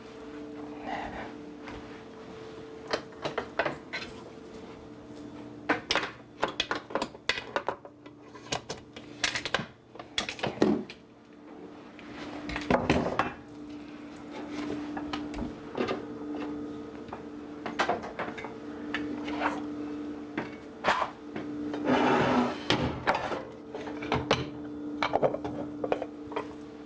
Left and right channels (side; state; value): both; identical; correlation 1.00